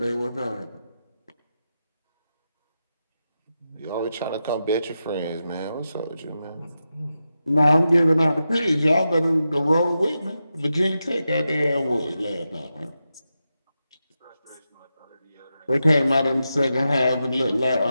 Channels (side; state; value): both; inverted; correlation -0.89